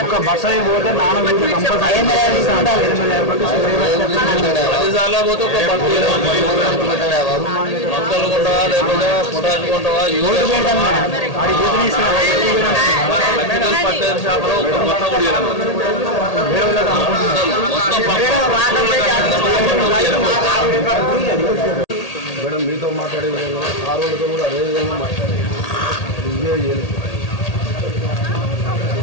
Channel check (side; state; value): right; late; 1.8 ms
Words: మేడం మీతో మాట్లాడే విధంగా ఆ రోజుతో కూడా అదే విధంగా మాట్లాడాలి.